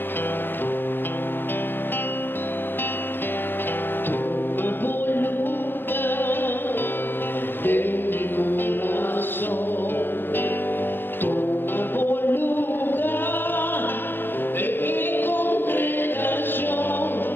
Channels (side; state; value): right; late; 0.097 ms